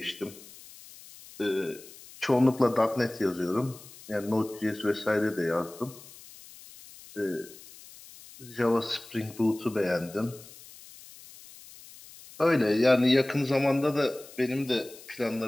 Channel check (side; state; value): left; noise; hiss, 19 dB below the sound